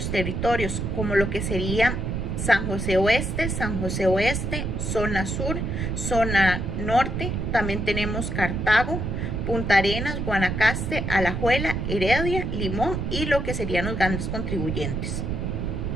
territorios, como lo que sería San José Oeste, zona sur, zona norte. También tenemos Cartago, Punta Arenas, Guanacaste, Alajuela, Heredia, Limón y lo que serían los grandes contribuyentes.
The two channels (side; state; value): right; noise; rumble, 2 dB below the sound